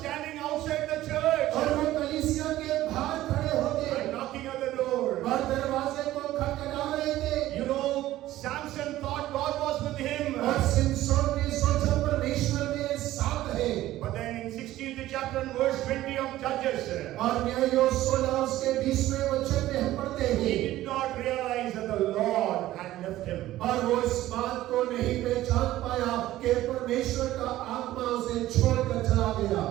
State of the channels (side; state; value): left; quieter; 15.0 dB